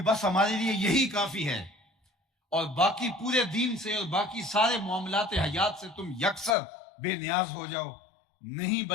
ہمارے لیے یہی کافی ہے اور باقی پورے دین سے اور باقی سارے معاملات حیات سے تم یکسر بے نیاز ہو جاؤ۔ نہیں،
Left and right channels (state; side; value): drops out; right; at 6.6 s